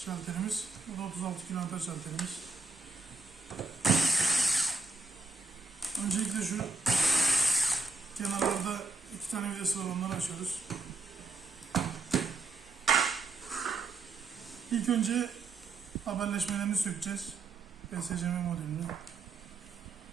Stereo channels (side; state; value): left; quieter; 3.6 dB